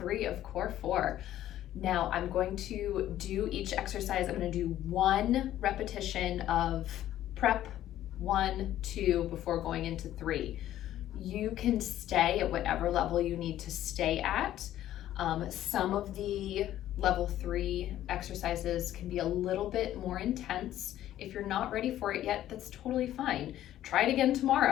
of Core 4. Now I'm going to do each exercise. I'm going to do 1 repetition of prep, 1, 2, before going into 3. You can stay at whatever level you need to stay at. Some of the level 3 exercises can be a little bit more intense. If you're not ready for it yet, that's totally fine. Try it again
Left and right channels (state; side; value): quieter; right; 12.8 dB